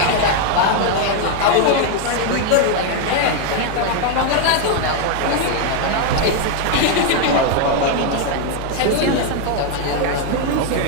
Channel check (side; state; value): both; different; correlation 0.01